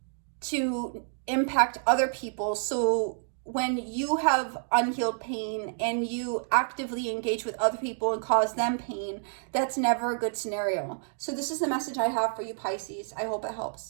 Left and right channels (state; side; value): silent; left; digital silence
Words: to impact other people. So when you have unhealed pain and you actively engage with other people and cause them pain, that's never a good scenario. So this is the message I have for you, Pisces. I hope it